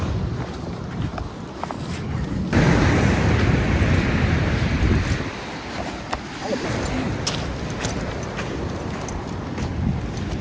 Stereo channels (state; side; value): identical; both; correlation 1.00